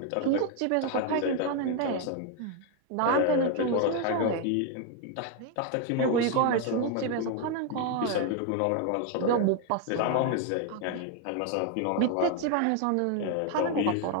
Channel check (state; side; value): different; both; correlation 0.01